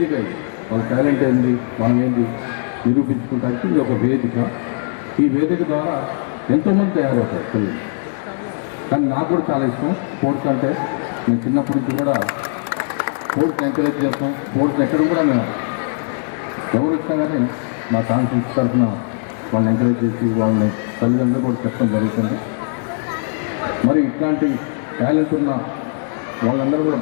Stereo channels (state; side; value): silent; right; 66 dB below the other